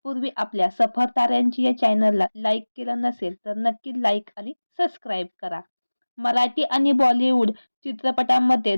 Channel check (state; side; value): inverted; both; correlation -1.00